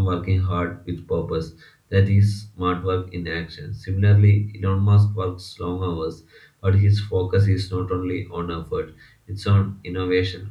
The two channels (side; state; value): both; identical; correlation 1.00